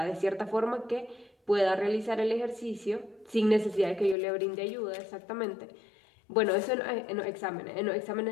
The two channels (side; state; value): right; drops out; at 4.2 s